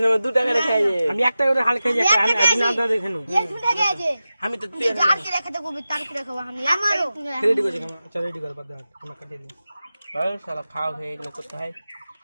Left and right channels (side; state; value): both; inverted; correlation -0.94